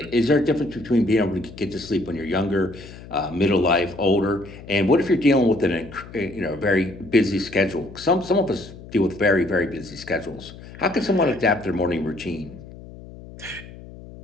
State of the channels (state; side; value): noise; left; hum, 16 dB below the sound